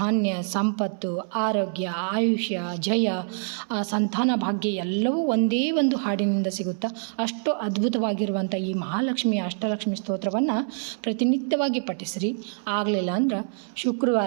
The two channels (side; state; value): left; silent; 61 dB below the other